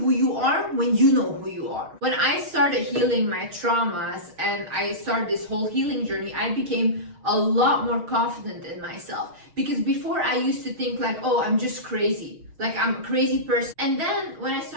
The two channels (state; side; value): late; left; 6.4 ms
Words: you are when you know who you are. When I started healing my traumas and I started this whole healing journey, I became a lot more confident in myself. Because before I used to think like, oh, I'm just crazy. Like I'm a crazy person. And then when I